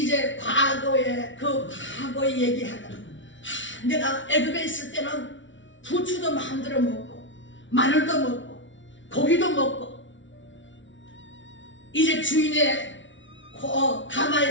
과거에 얘기하더라. 내가 애굽에 있을 때는 부추도 마음대로 먹고 마늘도 먹고 고기도 먹고 이제 주인의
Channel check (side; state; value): right; late; 0.55 ms